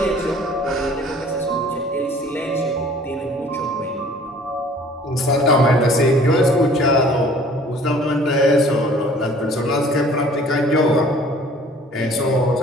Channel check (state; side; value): normal; both; correlation 0.52